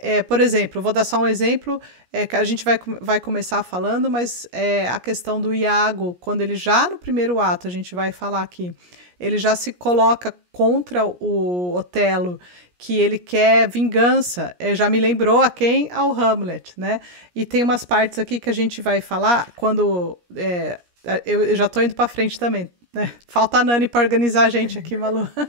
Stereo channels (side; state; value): left; late; 17 ms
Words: por exemplo, vou dar só um exemplo, que a gente vai começar falando, mas a questão do Iago, quando ele já no primeiro ato, a gente vai falar aqui, ele já se coloca contra o Otelo, que ele quer vingança. Já me lembrou a quem? Ao Hamlet, né? E tem umas partes aqui que a gente vai falar quando... eu já tô indo para frente também, né? Falta a Nani para organizar a gente aqui, Malu.